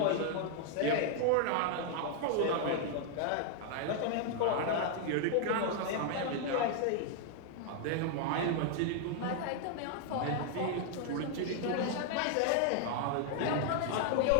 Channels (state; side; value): different; both; correlation 0.00